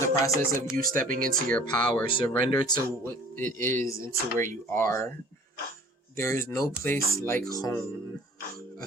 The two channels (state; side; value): normal; both; correlation 0.49